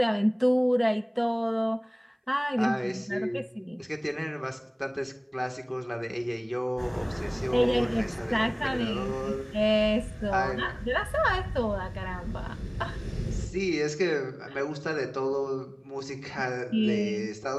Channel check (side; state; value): both; identical; correlation 1.00